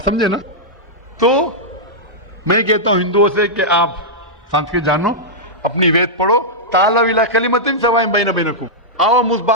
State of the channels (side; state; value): both; normal; correlation -0.09